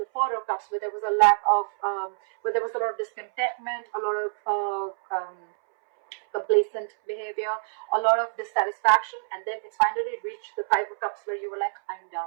Four of Cups, where there was a lack of, where there was a lot of discontentment, a lot of complacent behavior, a lot of dissatisfaction, and then it's finally reached the Five of Cups, where you were like, I'm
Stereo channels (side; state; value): left; silent; 61 dB below the other